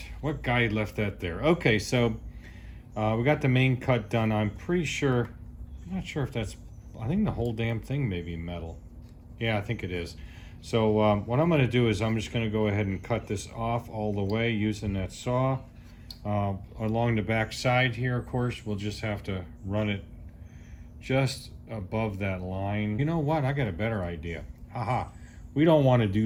What guy left that there? Okay, so we got the main cut done. I'm pretty sure, I'm not sure if that's, I think the whole damn thing may be metal. Yeah, I think it is. So what I'm gonna do is I'm just gonna go ahead and cut this off all the way using that saw. Along the back side here, of course, we'll just have to run it just above that line. You know what? I got a better idea. Haha. We don't want to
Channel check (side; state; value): both; identical; correlation 1.00